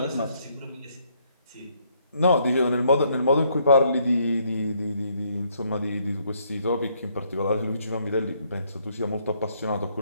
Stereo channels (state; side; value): inverted; both; correlation -0.70